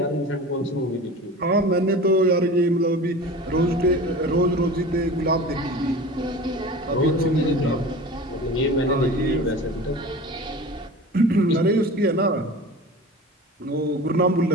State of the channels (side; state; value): both; normal; correlation 0.36